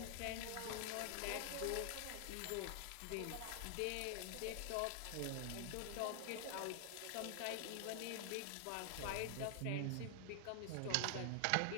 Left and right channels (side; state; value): both; different; correlation 0.00